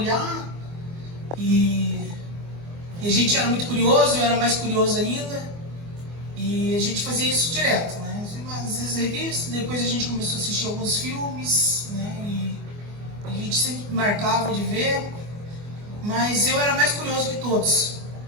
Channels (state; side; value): late; left; 24 ms